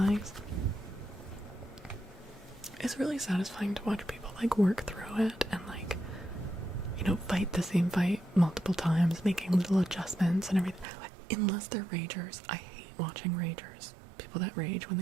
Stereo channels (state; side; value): drops out; left; at 10.9 s